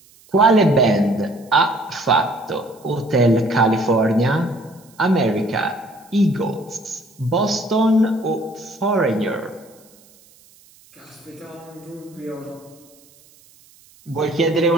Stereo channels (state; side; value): noise; right; hiss, 28 dB below the sound